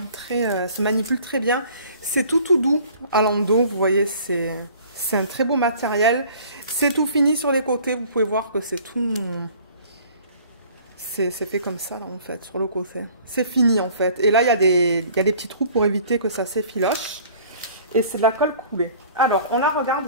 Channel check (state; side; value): inverted; both; correlation -0.50